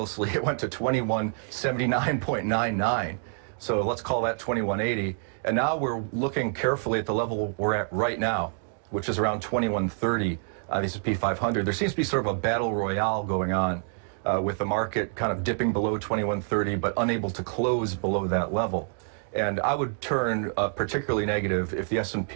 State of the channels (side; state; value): left; silent; 58 dB below the other